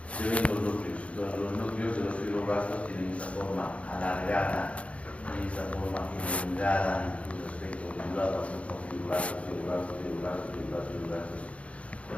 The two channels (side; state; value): right; late; 0.063 ms